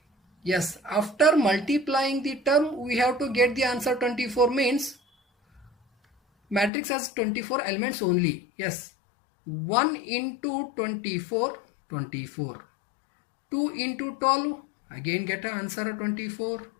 Yes, after multiplying the term, we have to get the answer 24, means matrix has 24 elements only. Yes, 1 into 24, 24. 2 into 12, Again get an answer 24.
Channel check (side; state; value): right; drops out; at 6.7 s